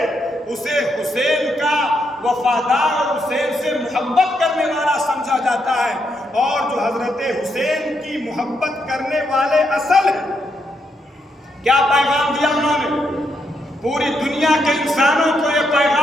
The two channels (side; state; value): both; normal; correlation 0.79